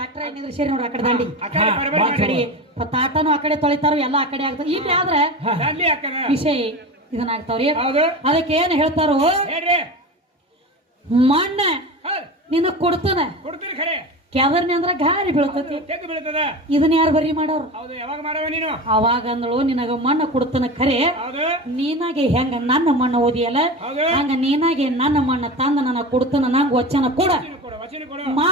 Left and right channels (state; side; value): normal; both; correlation 0.28